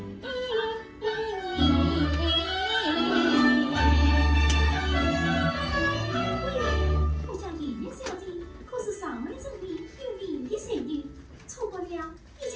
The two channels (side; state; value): both; identical; correlation 1.00